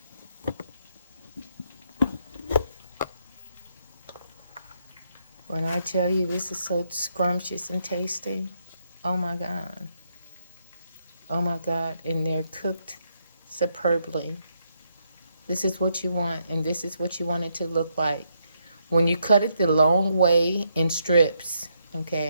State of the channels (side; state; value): both; inverted; correlation -0.77